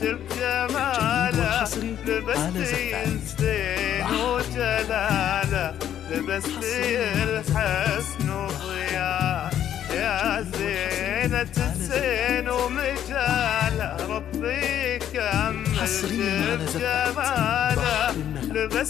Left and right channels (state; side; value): quieter; right; 10.5 dB